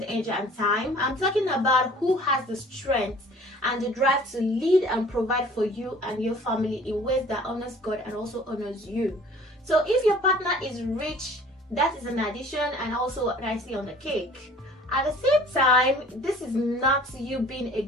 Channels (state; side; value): normal; both; correlation 0.50